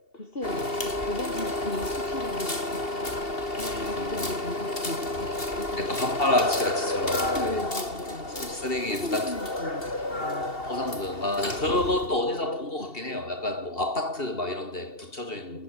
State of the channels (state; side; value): late; right; 2.7 ms